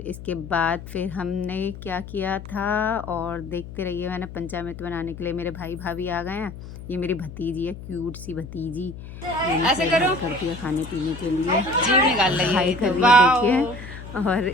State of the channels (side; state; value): left; noise; hum, 13 dB below the sound